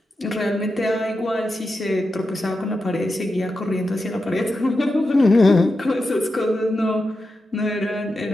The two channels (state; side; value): normal; both; correlation 0.89